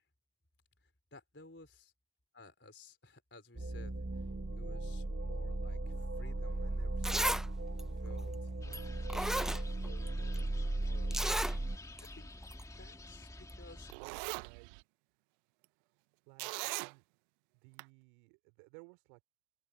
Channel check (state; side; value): drops out; left; at 14.0 s